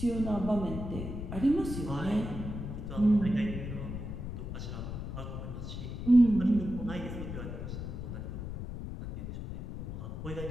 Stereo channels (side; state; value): left; noise; rumble, 6 dB below the sound